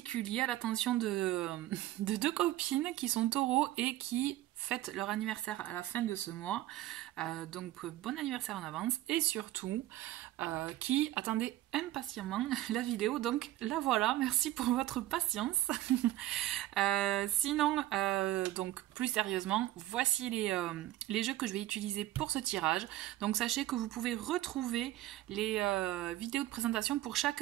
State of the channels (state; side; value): quieter; left; 15.1 dB